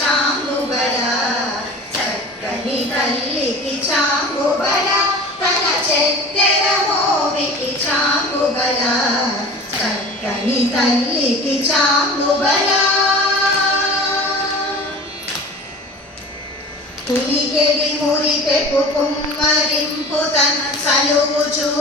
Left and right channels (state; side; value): normal; both; correlation 0.39